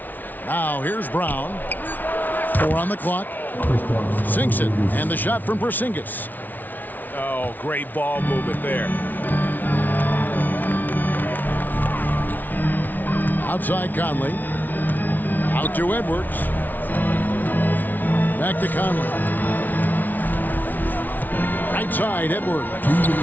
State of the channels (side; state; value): right; late; 0.083 ms